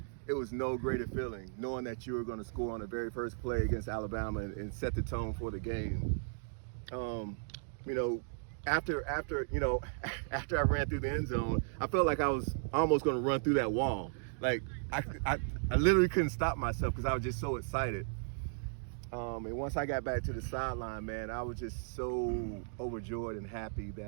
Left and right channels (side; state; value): left; silent; digital silence